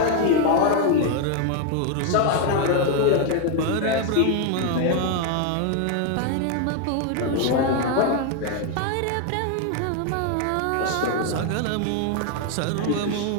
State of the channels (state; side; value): different; both; correlation 0.01